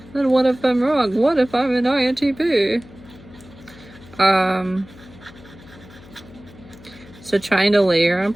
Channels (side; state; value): left; noise; hum, 21 dB below the sound